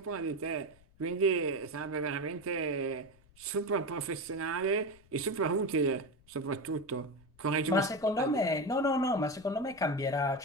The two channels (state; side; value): noise; left; rumble, 27 dB below the sound